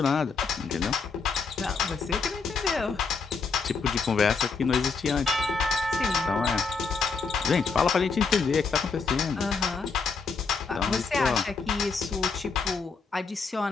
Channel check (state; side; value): quieter; right; 4.9 dB